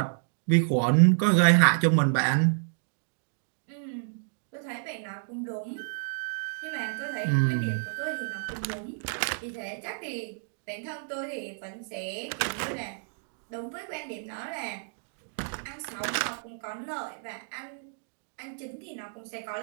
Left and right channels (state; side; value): silent; left; digital silence